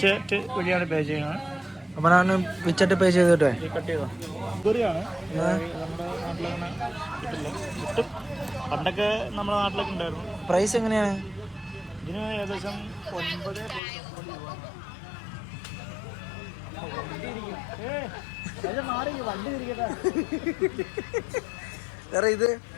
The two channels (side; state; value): right; drops out; at 13.8 s